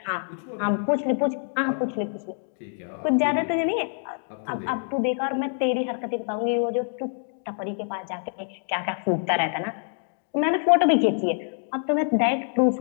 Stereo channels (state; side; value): silent; right; digital silence